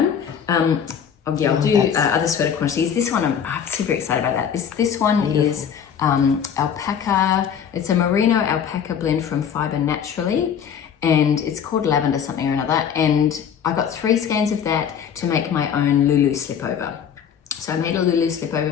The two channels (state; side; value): quieter; right; 8.0 dB